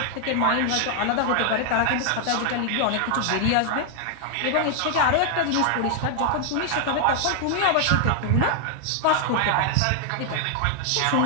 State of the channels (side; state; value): both; different; correlation 0.00